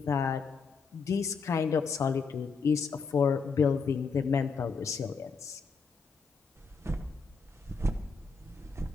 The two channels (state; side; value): quieter; right; 5.0 dB